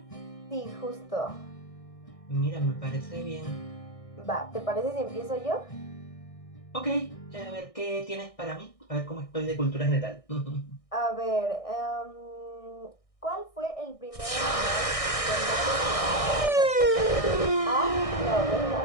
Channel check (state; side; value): late; right; 1.6 ms